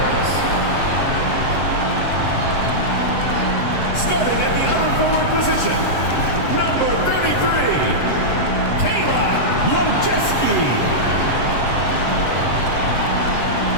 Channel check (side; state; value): right; late; 7.6 ms